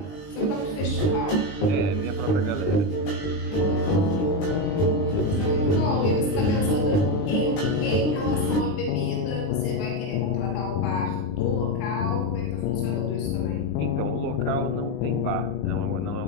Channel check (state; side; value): late; right; 20 ms